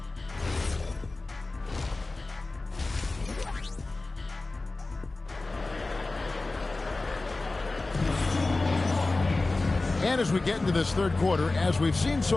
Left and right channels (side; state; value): right; quieter; 3.3 dB